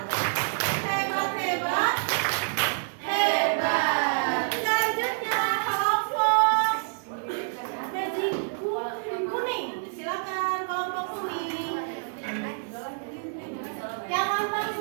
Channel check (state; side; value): silent; left; digital silence